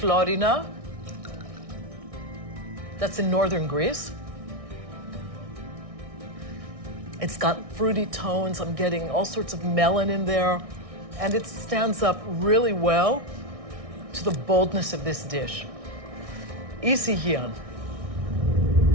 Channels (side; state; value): left; late; 1.6 ms